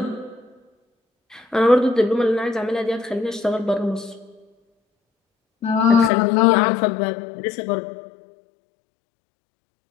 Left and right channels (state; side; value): drops out; right; at 6.1 s